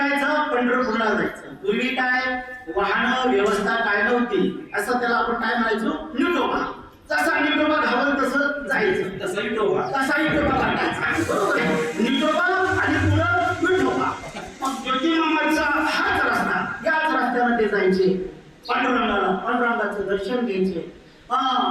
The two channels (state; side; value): identical; both; correlation 1.00